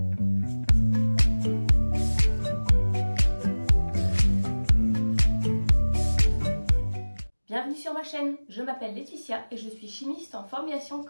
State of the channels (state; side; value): inverted; both; correlation -1.00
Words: Bienvenue sur ma chaîne, je m'appelle Laetitia et je suis chimiste en formulation